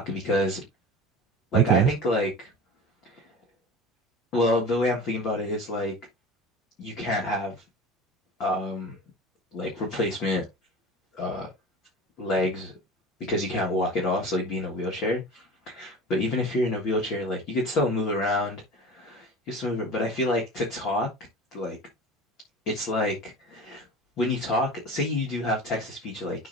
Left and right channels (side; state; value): both; normal; correlation 0.36